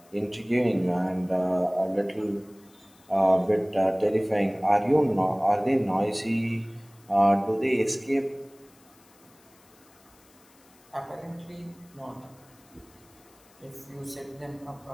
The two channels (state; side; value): noise; left; hiss, 29 dB below the sound